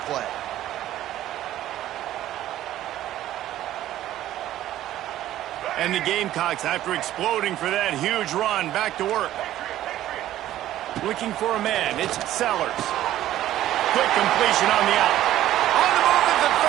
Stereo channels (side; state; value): left; quieter; 13.4 dB